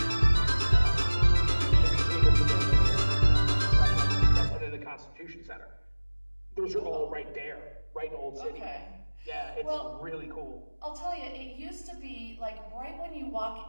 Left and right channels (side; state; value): both; inverted; correlation -1.00